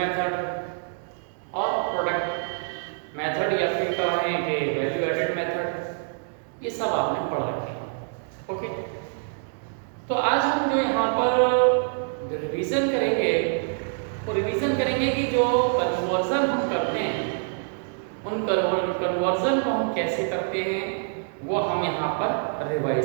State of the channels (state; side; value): silent; left; digital silence